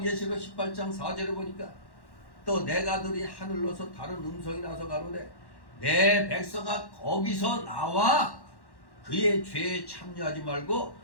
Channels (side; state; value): right; late; 1.1 ms